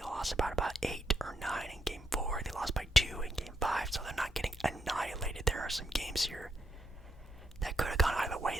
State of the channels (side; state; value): both; normal; correlation 0.79